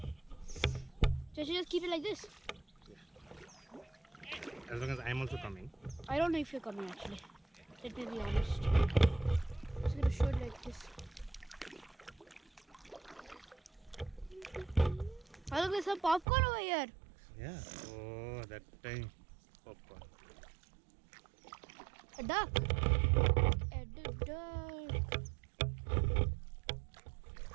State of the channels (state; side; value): drops out; left; at 16.2 s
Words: So I should just keep it like this? Yeah. As long as I'm also coming. I don't know if you're coming actually. Let me be honest. I'm just gonna show it like this. Oh, look, there's some popcorn over here. Yeah. Oh, that time. Popcorn. A duck. A duck.